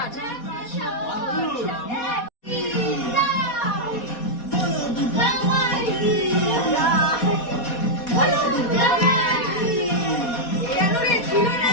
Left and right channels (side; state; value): right; late; 4.2 ms